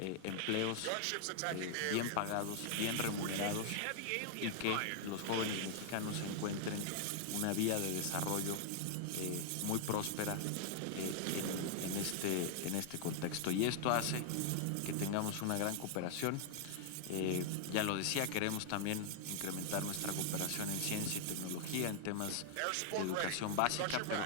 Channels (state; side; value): different; both; correlation 0.00